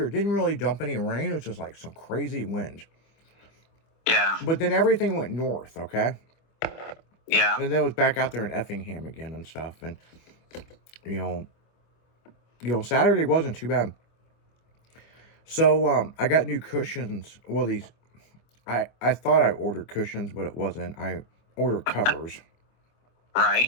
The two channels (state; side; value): late; right; 25 ms